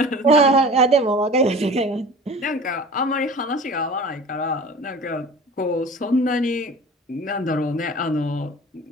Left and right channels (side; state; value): both; normal; correlation 0.40